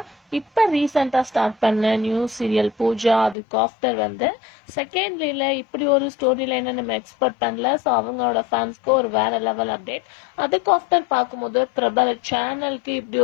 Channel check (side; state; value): right; drops out; at 3.4 s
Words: இப்ப ரீசெண்டா ஸ்டார்ட் பண்ண நியூ சீரியல் பூஜா. அதுக்கு ஆஃப்டர் செகண்ட்லில இப்படி ஒரு ஸ்டோரி லைன் நம்ம எக்ஸ்பெக்ட் பண்ணல. ஸோ அவங்களோட ஃபேன்ஸ்க்கு ஒரு வேற லெவல் அப்டேட். அதுக்கு ஆஃப்டர் பார்க்கும்போது பிரபல சேனலுக்கு இப்படி